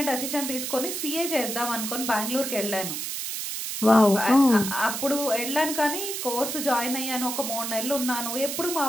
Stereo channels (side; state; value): right; noise; hiss, 4 dB below the sound